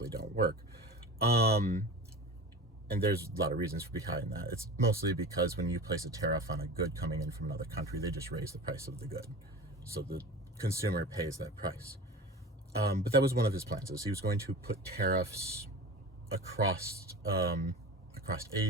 don't work. And there's a lot of reasons behind that. It's mostly because when you place a tariff on a good coming in from another country, they just raise the price of the good. So the consumer pays that price. But that was one of his plans, is he was going to put tariffs across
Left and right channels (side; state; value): both; normal; correlation 0.32